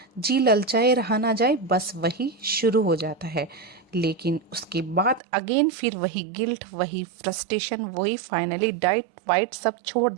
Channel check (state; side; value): drops out; left; at 5.2 s